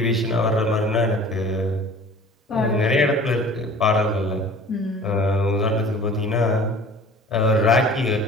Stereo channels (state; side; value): normal; both; correlation 0.45